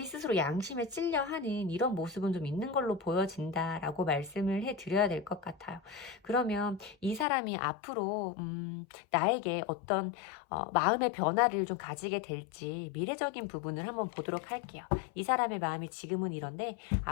스스로 양심에 찔려 하는 이런 모습은 좀 있는 걸로 보여진다라고 말씀을 해드려야 될 것 같아요. 그러면 이 사람이 앞으로 나에게 어떤 마음의 변화를 좀 가지게 될지 미래적인 부분을 한번 보도록 할게요. 이 사람의 마음이 지금은 이런데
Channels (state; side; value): drops out; right; at 7.2 s